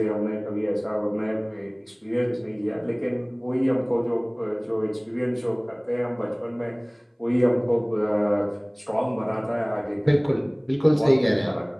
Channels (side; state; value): both; identical; correlation 1.00